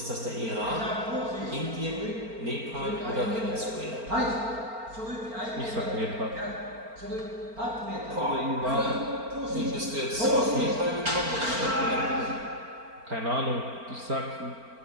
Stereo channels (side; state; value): left; late; 4.4 ms